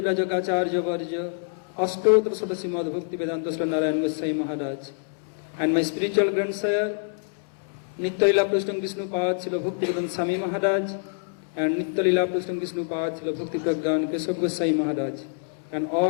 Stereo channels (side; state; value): right; silent; 61 dB below the other